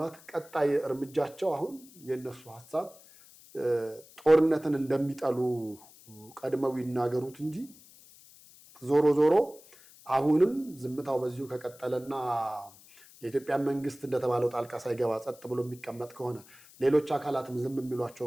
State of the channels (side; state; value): left; noise; hiss, 23 dB below the sound